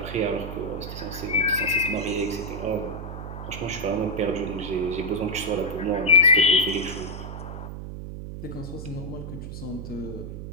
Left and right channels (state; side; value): noise; right; hum, 8 dB below the sound